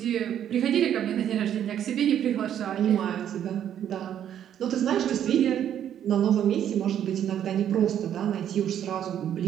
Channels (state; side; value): quieter; left; 10.0 dB